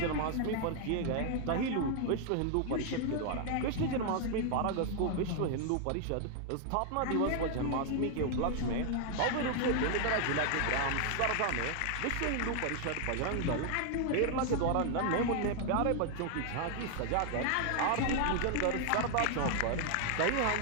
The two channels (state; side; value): different; both; correlation 0.00